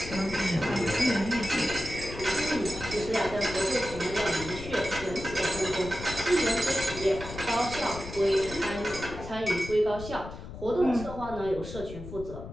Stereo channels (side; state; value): left; noise; rumble, 11 dB below the sound